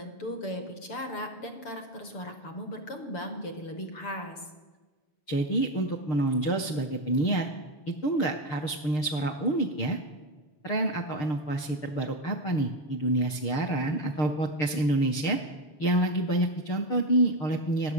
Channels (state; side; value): late; right; 6.7 ms